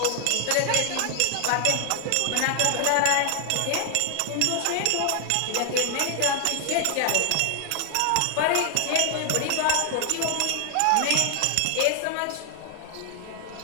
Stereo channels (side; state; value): both; different; correlation 0.00